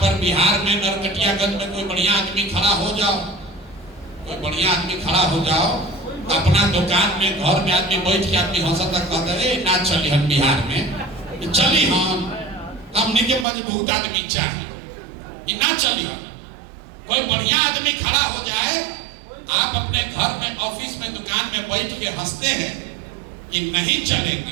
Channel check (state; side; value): drops out; left; at 13.5 s